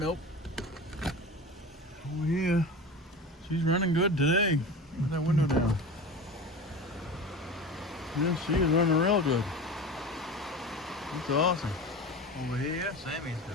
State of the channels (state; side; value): normal; both; correlation 0.32